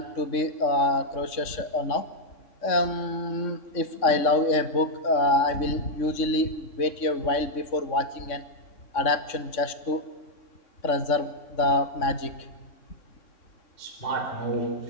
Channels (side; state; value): right; late; 3.6 ms